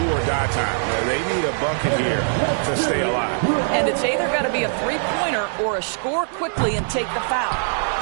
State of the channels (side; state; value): left; silent; digital silence